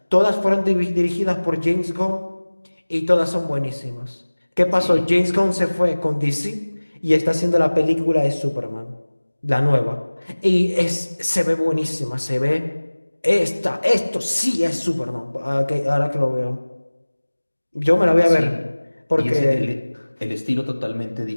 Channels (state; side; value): inverted; both; correlation -1.00